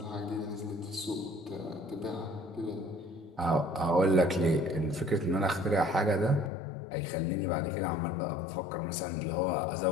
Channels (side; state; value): right; drops out; at 6.5 s